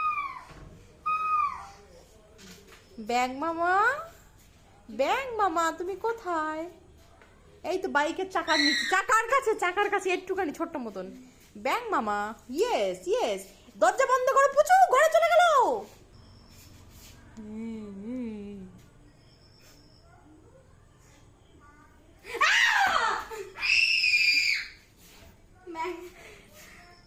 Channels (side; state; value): both; identical; correlation 1.00